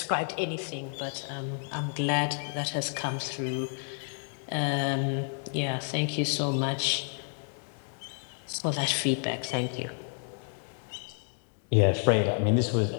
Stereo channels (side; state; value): right; silent; 55 dB below the other